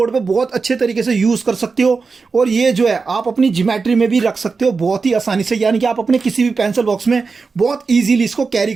पे बहुत अच्छे तरीके से यूज़ कर सकते हो। और ये जो है आप अपनी ज्योमेट्री में भी रख सकते हो बहुत ही आसानी से, यानी कि आप अपने किसी भी पेंसिल बॉक्स में बहुत ईजीली इसको कैरी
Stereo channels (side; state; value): left; quieter; 4.6 dB